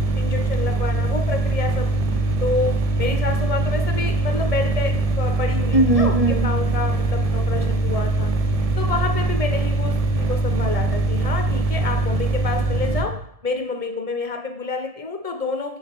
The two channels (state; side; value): late; left; 1.7 ms